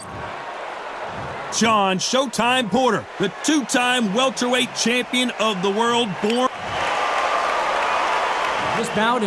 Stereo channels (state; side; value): identical; both; correlation 1.00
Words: Shawn Showtime Porter, the two-time welterweight champion of the world, born... This bout